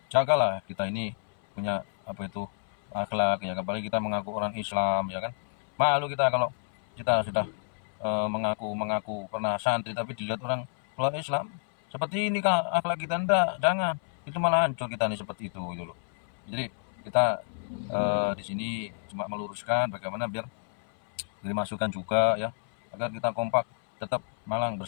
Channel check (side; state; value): right; silent; 58 dB below the other